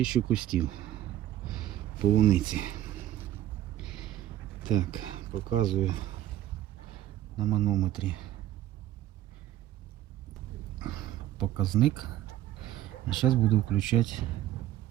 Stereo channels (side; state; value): left; quieter; 13.2 dB